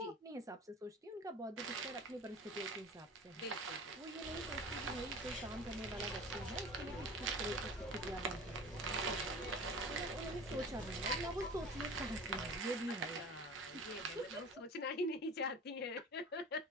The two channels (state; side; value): normal; both; correlation 0.39